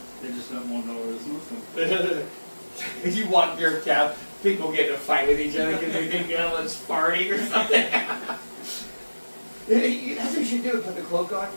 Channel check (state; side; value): inverted; both; correlation -1.00